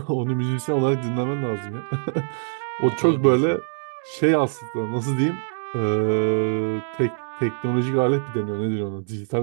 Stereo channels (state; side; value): silent; left; digital silence